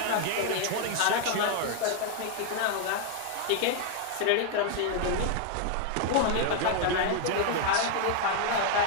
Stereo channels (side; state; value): both; different; correlation 0.00